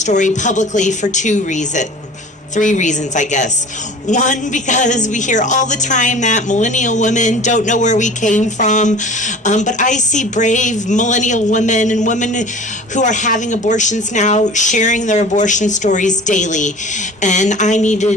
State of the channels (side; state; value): both; normal; correlation 0.42